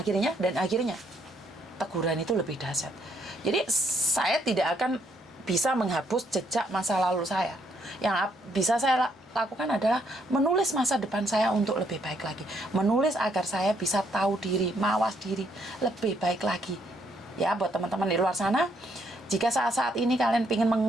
teguran itu lebih dahsyat. Jadi saya tidak akan bisa menghapus jejak masa lalu saya. Yang bisa saya lakukan adalah menulis masa depan saya untuk lebih baik lagi. Menulis agar saya bisa tahu diri, mawas diri lebih baik lagi. Ya, buat teman-teman di luar sana, jika saat-saat ini kalian ingin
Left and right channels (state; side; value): normal; both; correlation 0.72